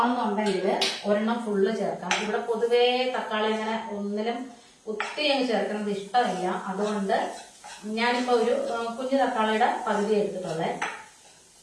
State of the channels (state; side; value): identical; both; correlation 1.00